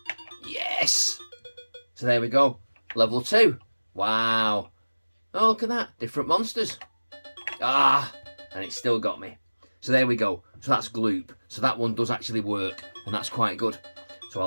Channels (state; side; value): inverted; both; correlation -1.00